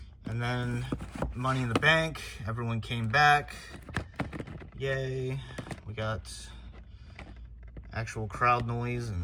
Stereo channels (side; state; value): both; identical; correlation 1.00